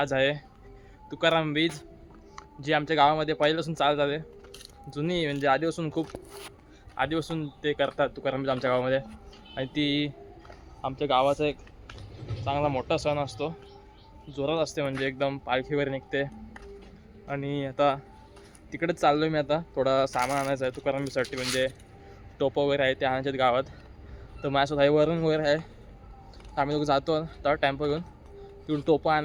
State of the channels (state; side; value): identical; both; correlation 1.00